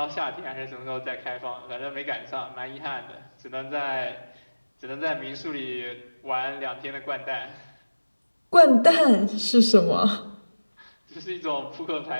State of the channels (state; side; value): inverted; both; correlation -1.00